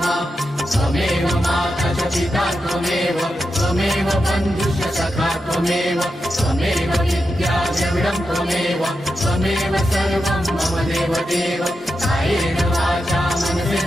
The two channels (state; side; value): normal; both; correlation 0.88